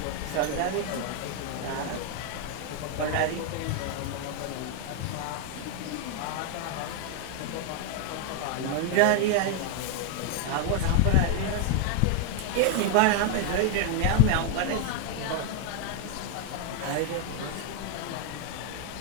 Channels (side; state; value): both; different; correlation 0.00